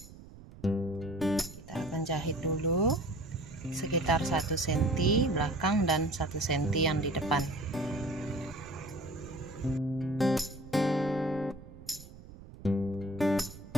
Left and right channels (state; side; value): noise; right; rumble, 17 dB below the sound